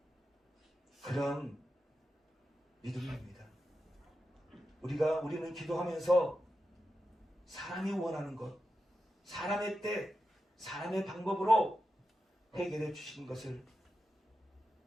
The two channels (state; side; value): normal; both; correlation 0.89